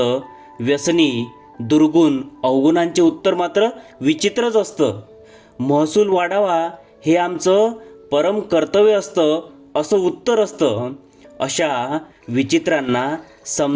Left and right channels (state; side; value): identical; both; correlation 1.00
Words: व्यसनी दुर्गुण अवगुणांचे उत्तर मात्र विचित्रच असतं. महसूल वाढावा हे आमचं परम कर्तव्य असतं असं उत्तर असतं. अशा विचित्रांना